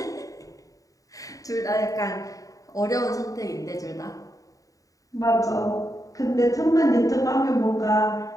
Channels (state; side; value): late; right; 0.16 ms